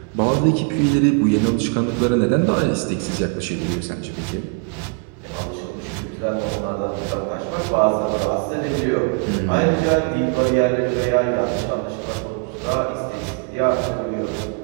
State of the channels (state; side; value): quieter; left; 35.5 dB